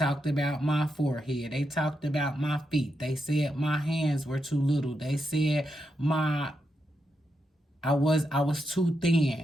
about my forehead. They talked about my feet. They said my hands were too little. They said I was too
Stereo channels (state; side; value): normal; both; correlation 0.84